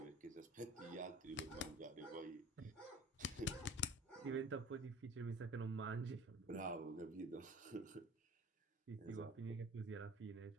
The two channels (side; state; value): both; normal; correlation 0.43